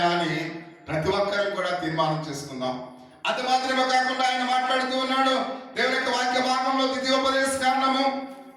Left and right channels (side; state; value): both; identical; correlation 1.00